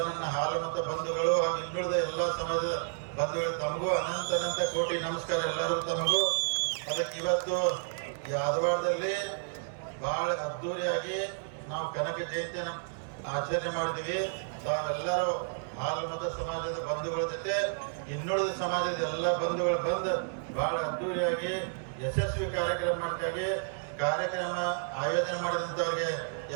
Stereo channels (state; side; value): silent; left; digital silence